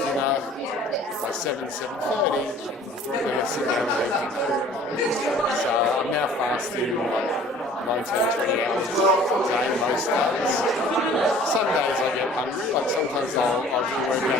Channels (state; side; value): normal; both; correlation 0.50